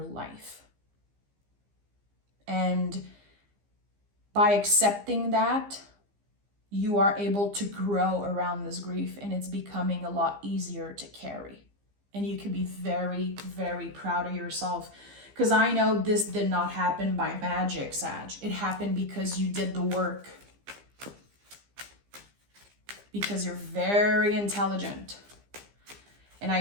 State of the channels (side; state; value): left; late; 15 ms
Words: life. And by accepting that, you are able to grow around this grief, and it's becoming a lot easier to carry. And you can be very, very proud of yourself, because I know this did not happen by magic, Sag. It happened because you did the work. Because you're very intelligent. And